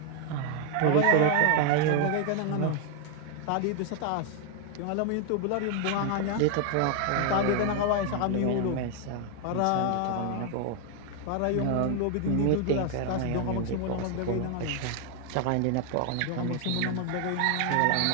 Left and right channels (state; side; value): different; both; correlation 0.00